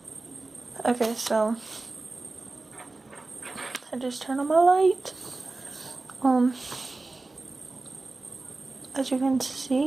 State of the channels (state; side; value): quieter; left; 3.3 dB